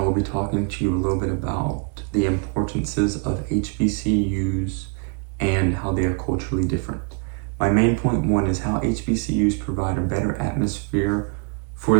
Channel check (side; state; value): left; quieter; 35.6 dB